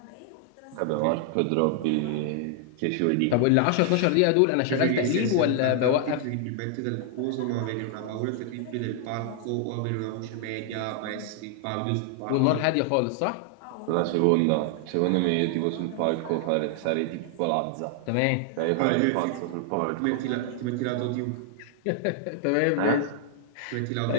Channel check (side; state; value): both; different; correlation 0.00